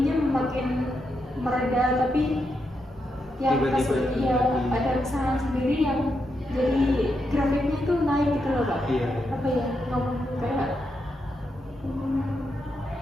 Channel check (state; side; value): normal; both; correlation 0.83